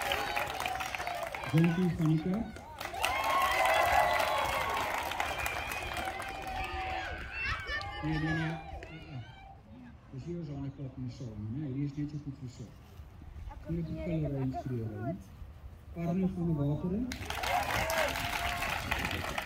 Jonathan van die Kerk. Nee. Dus hier is aan klap in die saal, nee, hier is net so goed versorg. Hier het die killery instruere. Arno van die Wateren.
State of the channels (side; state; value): both; identical; correlation 1.00